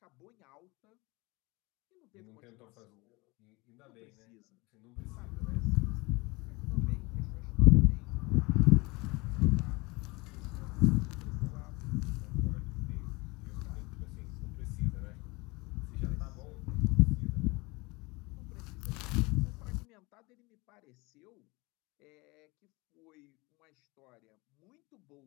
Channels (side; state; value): right; quieter; 24.7 dB